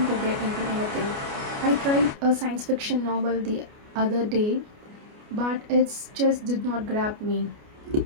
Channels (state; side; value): late; left; 29 ms